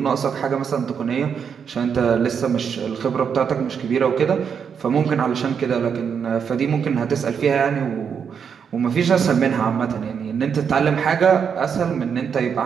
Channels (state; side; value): quieter; left; 7.0 dB